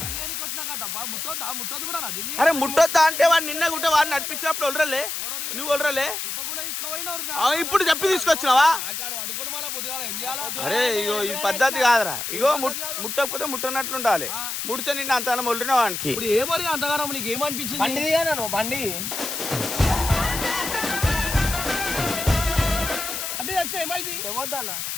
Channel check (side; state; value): left; noise; hiss, 4 dB below the sound